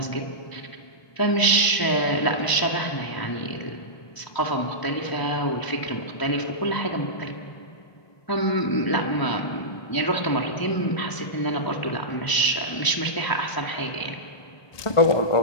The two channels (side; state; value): right; late; 1.0 ms